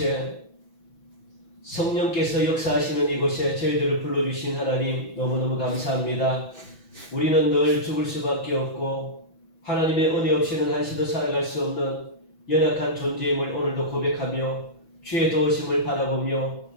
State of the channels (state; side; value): late; right; 6.0 ms